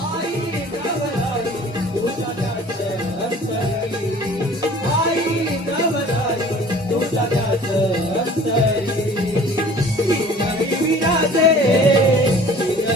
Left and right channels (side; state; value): both; normal; correlation 0.47